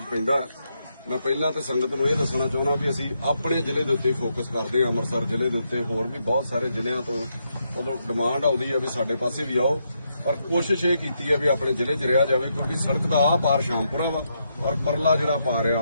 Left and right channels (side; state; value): both; inverted; correlation -0.80